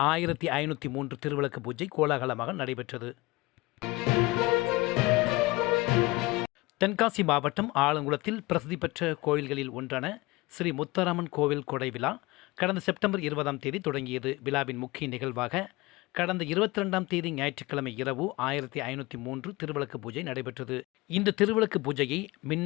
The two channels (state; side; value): quieter; right; 22.0 dB